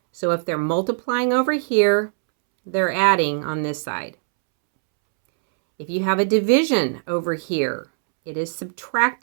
So if they're multiplying over here, they're adding on this side. If you have a division over here, it is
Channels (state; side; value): silent; left; 65 dB below the other